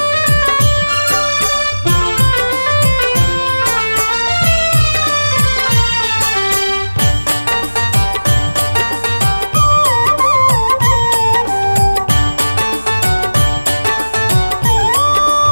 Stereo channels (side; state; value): both; inverted; correlation -1.00